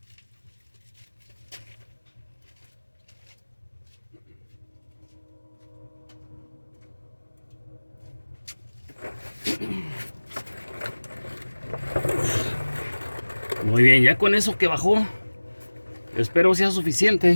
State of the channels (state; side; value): inverted; both; correlation -1.00